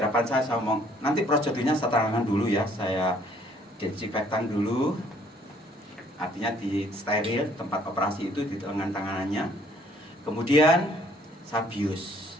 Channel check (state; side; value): normal; both; correlation 0.61